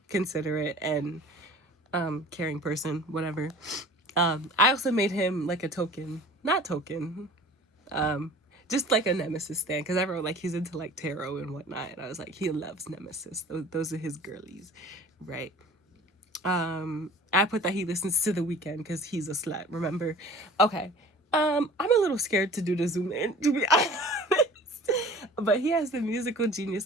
considerate and caring person, whatever. I also made him like a token, not token, just like a Nemesis stand, because I wrote like he's into like tarot and whatnot, and I was like, he loves Nemesis. Those are his girlies, right? I put that he listens to The Weeknd because he's a slut. Remember? Okay. I'm a little scared to do the zoom in, to be honest. But he has the musical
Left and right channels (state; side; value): normal; both; correlation 0.45